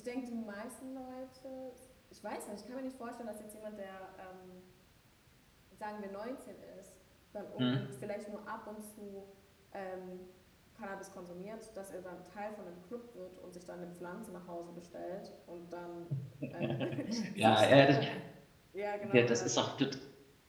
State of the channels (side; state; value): both; identical; correlation 1.00